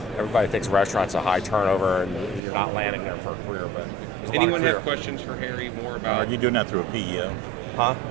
Everybody thinks restaurants are high turnover and you're not landing there for a career, but there's a lot of career. Anyone have questions for Harry more about? Are you doing that through a PEO? Huh?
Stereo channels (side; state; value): left; drops out; at 2.4 s